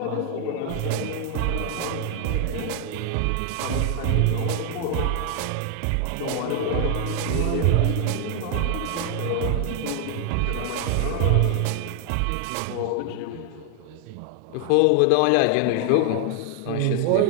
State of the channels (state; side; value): different; both; correlation 0.00